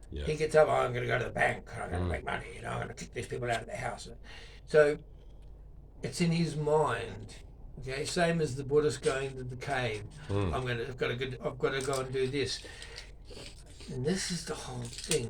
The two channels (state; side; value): identical; both; correlation 1.00